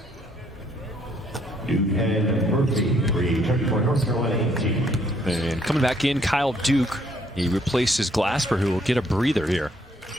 And coming back in, Kyle Duke. He replaces Glasper, who will get a breather here.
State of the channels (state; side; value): normal; both; correlation 0.68